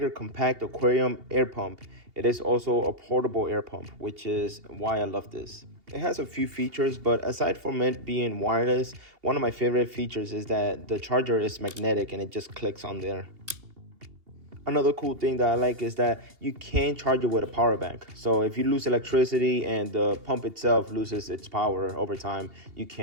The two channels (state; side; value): late; left; 2.8 ms